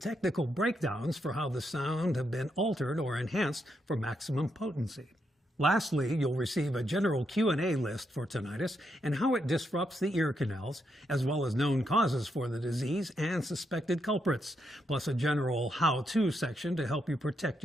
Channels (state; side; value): normal; both; correlation 0.80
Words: breakdowns for how the sound have been altered or enhanced for maximum potency. Lastly, you'll receive a general Q&A list for tinnitus and how it disrupts the ear canals, as well as known causes for the disease and suspected culprits, plus a general how-to section to help you protect